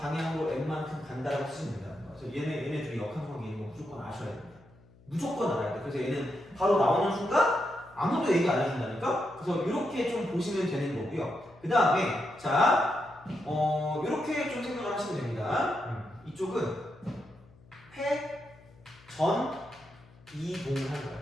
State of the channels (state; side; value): noise; left; hum, 26 dB below the sound